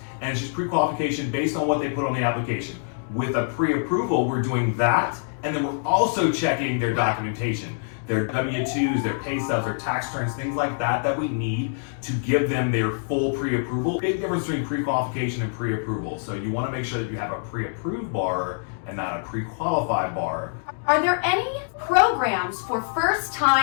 and it's just pre-qualification based on what they put on the application. With a pre-approval, we're doing that, and then we're also checking their documentation, their W-2s, their pay stubs, their tax returns, things like that that we need to give them their full pre-approval. Big difference between pre-qualification and pre-approval. So you want to make sure that you have a pre-approved borrower and not a pre-qualified borrower. Are there any programs for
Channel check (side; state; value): right; silent; digital silence